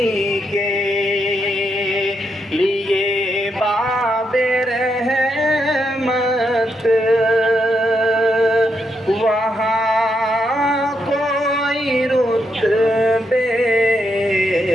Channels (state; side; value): normal; both; correlation 0.80